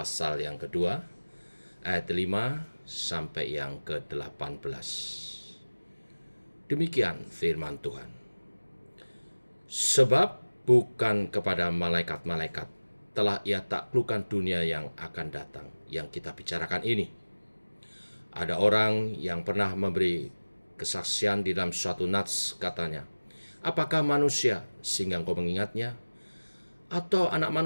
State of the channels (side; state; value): both; inverted; correlation -1.00